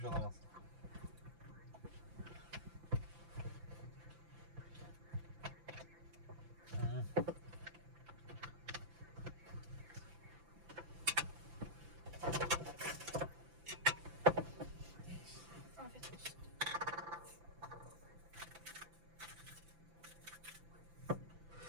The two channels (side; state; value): left; late; 5.9 ms